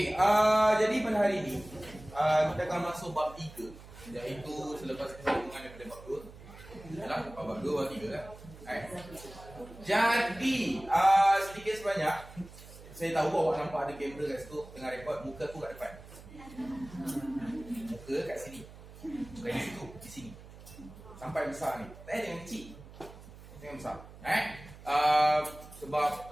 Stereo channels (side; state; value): right; noise; hum, 18 dB below the sound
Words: jadi pada hari ini kita akan masuk bab 3, iaitu selepas kesambungan daripada bab 2. Yalah, bab 2 bab 3 kan. Jadi sedikit sebanyak saya tahu awak nampak ada kamera kat situ tengah rekod, muka aku kat depan. Muka kat sini. Bukan di situ, di sini. Sampai besar ni. Jangan kecil. Jangan besar. Sebab